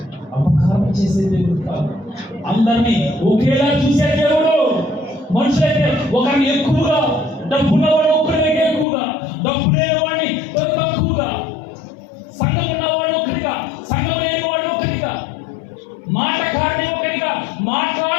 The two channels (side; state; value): right; drops out; at 8.8 s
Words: అపకారం చేసే దేవుడు కాదు, అందరినీ ఒకేలా చూసే దేవుడు. మనుషులైతే ఒకరిని ఎక్కువగా, డబ్బున్నవాడు ఒకరిని ఎక్కువగా, డబ్బు లేనివాడిని తక్కువగా, సంఘం ఉన్నవాడు ఒకరిగా, సంఘం లేని వాడు ఒకరిగా, మాటకారిని ఒకరిగా,